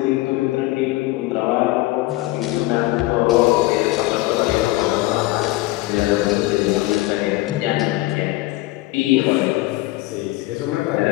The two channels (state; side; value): quieter; right; 18.9 dB